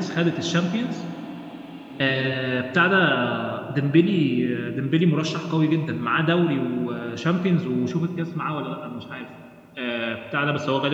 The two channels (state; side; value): identical; both; correlation 1.00